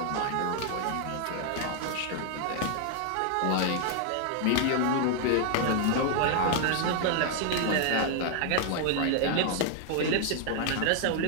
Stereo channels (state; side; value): different; both; correlation 0.00